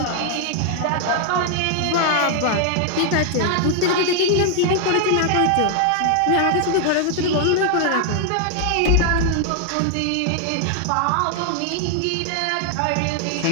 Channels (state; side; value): different; both; correlation 0.00